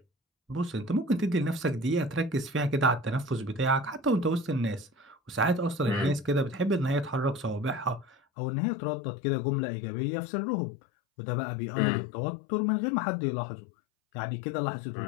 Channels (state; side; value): drops out; right; at 8.2 s